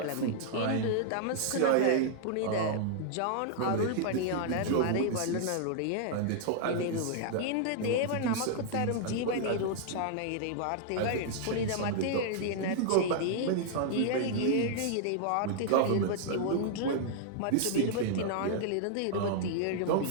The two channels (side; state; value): both; different; correlation -0.01